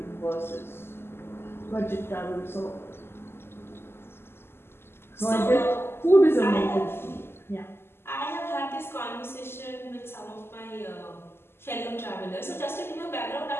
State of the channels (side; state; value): right; late; 0.12 ms